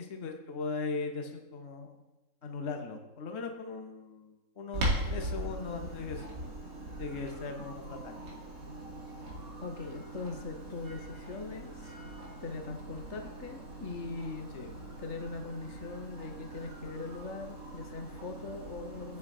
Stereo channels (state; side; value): late; left; 3.7 ms